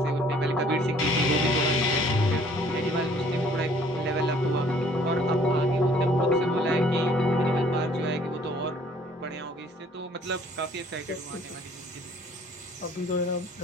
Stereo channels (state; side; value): normal; both; correlation 0.58